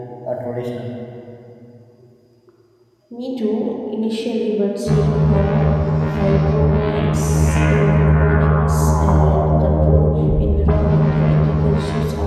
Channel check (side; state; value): both; identical; correlation 1.00